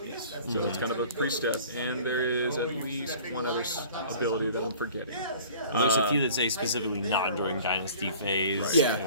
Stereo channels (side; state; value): both; inverted; correlation -0.47